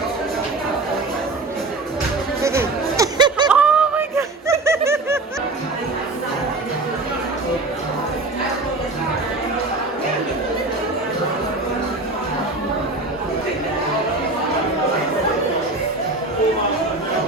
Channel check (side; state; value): left; quieter; 3.2 dB